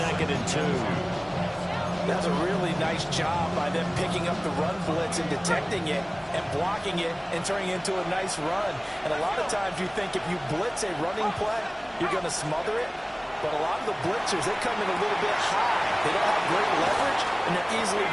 and 2. That's a really nice job by them picking up the run blitz and detecting it and blocking it and turning it into a nice run. And a lot of times you think if you blitz a running play, you're going to smother it. But a lot of the blitzers, they come in a little bit high. They don't have great leverage, and they're easily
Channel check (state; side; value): identical; both; correlation 1.00